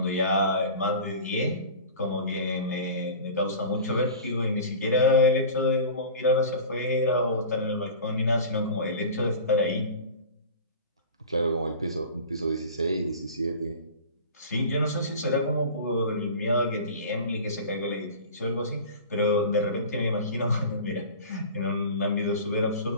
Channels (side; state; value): both; inverted; correlation -0.37